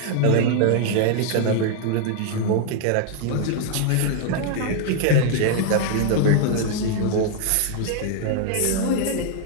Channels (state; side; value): different; both; correlation 0.00